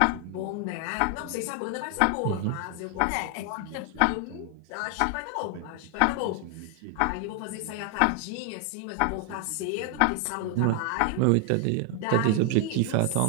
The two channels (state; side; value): different; both; correlation 0.00